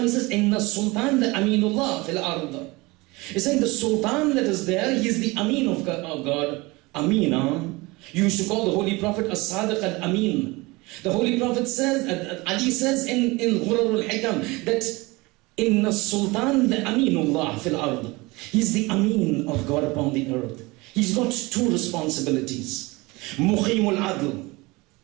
he says, Inna Sultan the Aminullah fil Arda. He's saying the Sultan that is there, he is the Amin of God. Amina. You used to call the Holy Prophet As-Sadiq Al-Amin. The Holy Prophet says, Ali says in Ghurarul Hikam that Inna Sultan the Aminullah fil Ard. He's the Amin of God upon the earth. He's got 2 responsibilities. Muqimul Adl,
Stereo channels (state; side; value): quieter; left; 23.4 dB